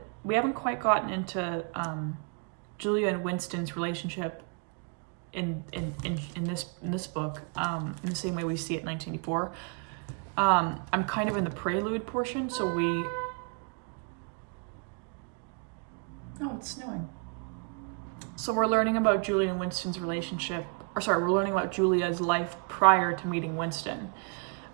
We haven't quite gotten into Julia and Winston's relationship in this book in the same way we see it in 1984. I'm kind of in the prelude portion, so oh, it's snowing. So we're learning about Julia and Winston's relationship, we're learning about Julia's life prior to meeting Winston.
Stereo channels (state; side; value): quieter; left; 38.5 dB